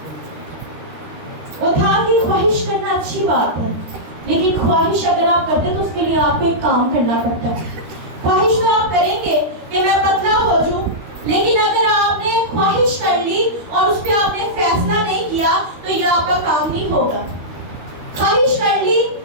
وہ تھا کہ خواہش کرنا اچھی بات ہے، لیکن خواہش اگر آپ کرتے تو اس کے لیے آپ کو ایک کام کرنا پڑتا ہے. خواہش تو آپ کریں گے کہ میں پتلا ہو جاؤں، لیکن اگر آپ نے خواہش کر لی اور اس پہ آپ نے فیصلہ نہیں کیا تو یہ آپ کا کام نہیں ہوگا. خواہش کر لی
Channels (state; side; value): late; left; 13 ms